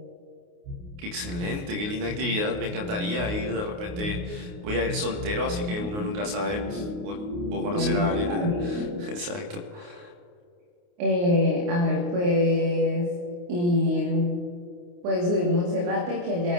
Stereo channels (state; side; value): late; left; 29 ms